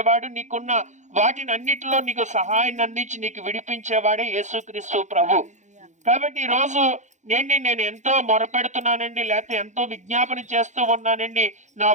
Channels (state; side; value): late; left; 0.35 ms